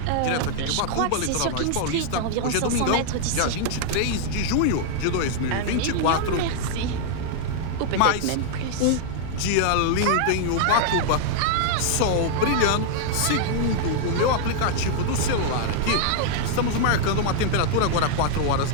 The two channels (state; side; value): different; both; correlation -0.01